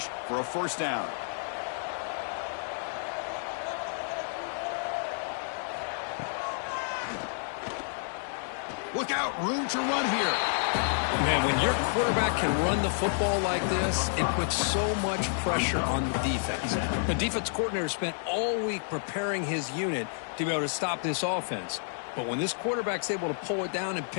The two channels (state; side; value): silent; right; digital silence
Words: for a first down. Look out, room to run here. Man, when your quarterback can run the football like this, it puts so much pressure on the defense. The defense coordinator spent all week preparing his unit to be able to stop this offense. But when this quarterback's able to pull it down and